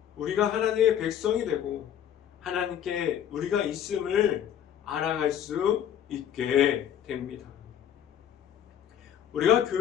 우리가 하나님의 백성이 되고 하나님께 우리가 있음을 알아갈 수 있게 됩니다. 우리가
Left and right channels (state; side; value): quieter; right; 9.6 dB